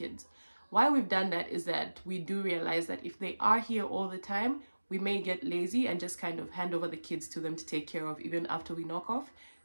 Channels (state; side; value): inverted; both; correlation -1.00